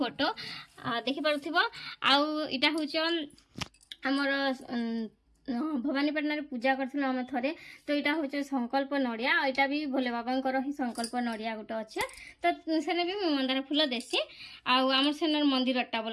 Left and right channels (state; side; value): identical; both; correlation 1.00